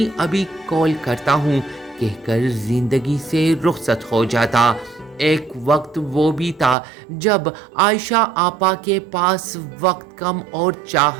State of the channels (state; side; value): drops out; left; at 6.8 s